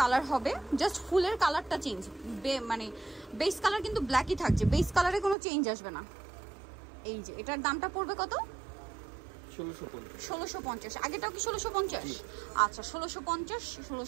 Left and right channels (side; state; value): left; drops out; at 5.4 s